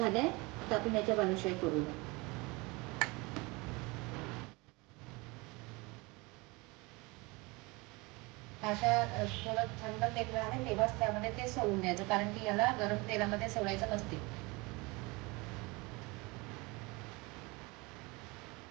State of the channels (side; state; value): left; quieter; 25.3 dB